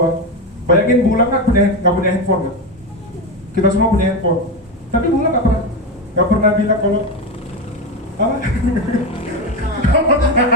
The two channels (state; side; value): normal; both; correlation 0.15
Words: Bayangin Bulang nggak punya handphone kan? Kita semua punya handphone. Tapi Bulang nggak pernah bilang kalau apa?